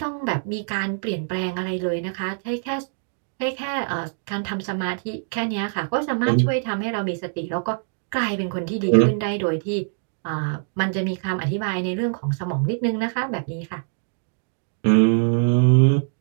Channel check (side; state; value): left; silent; digital silence